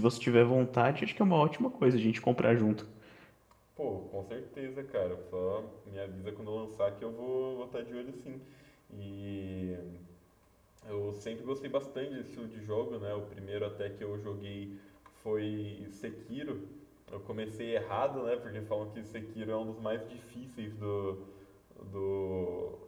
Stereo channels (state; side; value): identical; both; correlation 1.00